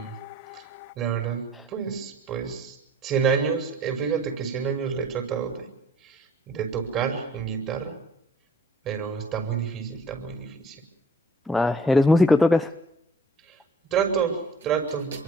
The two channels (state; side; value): normal; both; correlation 0.53